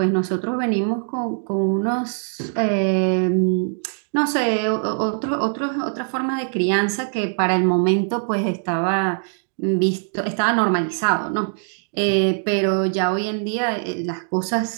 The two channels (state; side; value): silent; left; digital silence